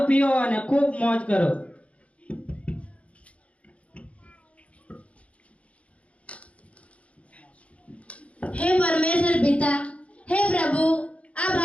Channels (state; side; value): late; right; 0.064 ms